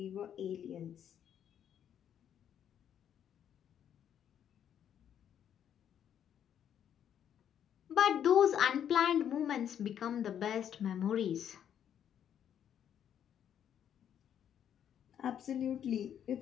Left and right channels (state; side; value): quieter; right; 9.4 dB